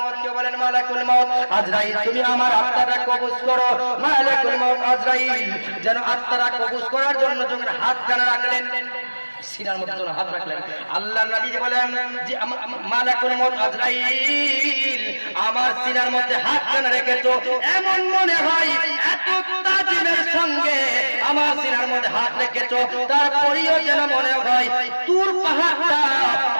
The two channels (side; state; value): both; inverted; correlation -1.00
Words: কে বলেন, মালাকুল মউত, আজরাইল তুমি আমার আত্মাটা কবজ করো। মালাকুল মউত আজরাইল যেন আত্মাটা কবজ করার জন্য যখন হাত কানা রাখলেন, সিনার মধ্যে যখন হাত রাখলেন, আল্লাহর নবীজি বলেন যে মালাকুল মউত আজরাইল আমার সিনার মধ্যে হাত কানা রেখেছো, এমন মনে হয় এত তাজিমের সঙ্গে আমার সিনার মধ্যে হাত রেখেছো, তারপরেও যেন মনে হয় তুর পাহাড়টা